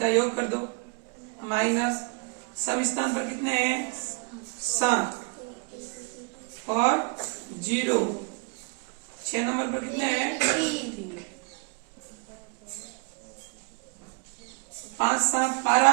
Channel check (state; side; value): quieter; left; 34.7 dB